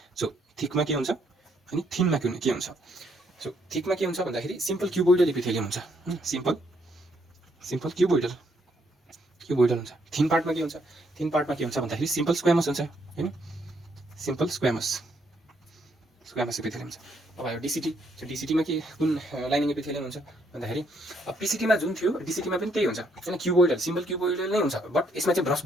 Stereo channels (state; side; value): normal; both; correlation 0.72